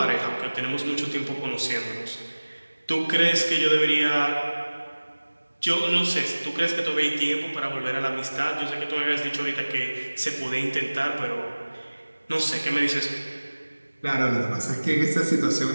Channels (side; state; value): both; inverted; correlation -1.00